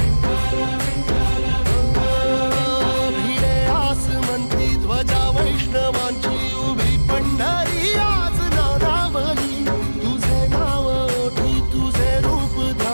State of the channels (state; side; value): inverted; both; correlation -1.00